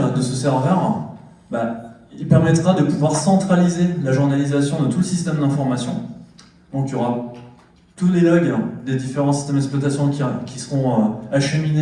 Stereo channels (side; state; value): both; identical; correlation 1.00